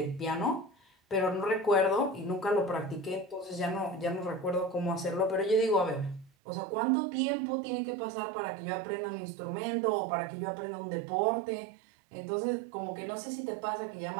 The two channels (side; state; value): left; drops out; at 6.3 s